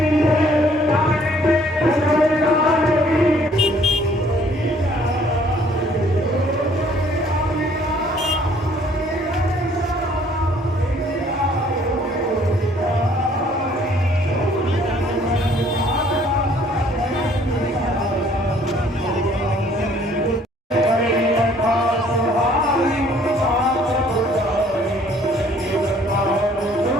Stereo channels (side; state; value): both; normal; correlation 0.60